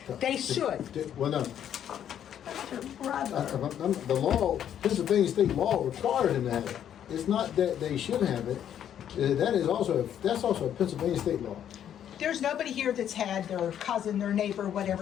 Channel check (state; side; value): quieter; right; 9.8 dB